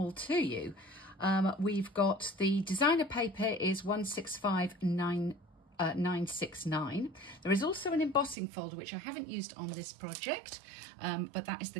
to you. We've got the designer paper is 165969. There is also an embossing folder, which I haven't used on this project, but that is the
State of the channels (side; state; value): left; drops out; at 8.3 s